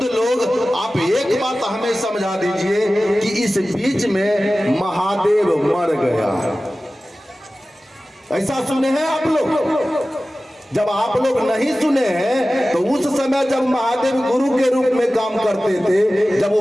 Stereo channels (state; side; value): normal; both; correlation 0.96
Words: लोग, आप एक बात हमें समझा दीजिए कि इस बीच में महादेव मर गया, ऐसा सुने हैं आप लोग? जब आप लोग नहीं सुने हैं तो उस समय जब महादेव गुरु के रूप में काम करते थे, जब वो